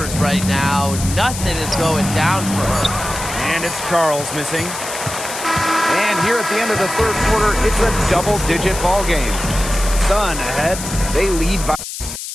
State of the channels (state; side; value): noise; left; hiss, 8 dB below the sound